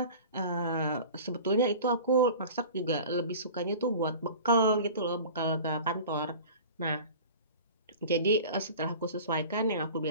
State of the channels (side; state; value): both; inverted; correlation -0.39